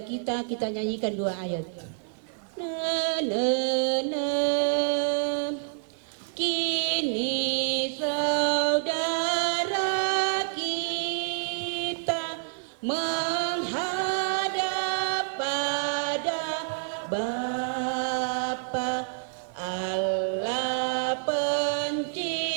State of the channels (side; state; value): left; silent; digital silence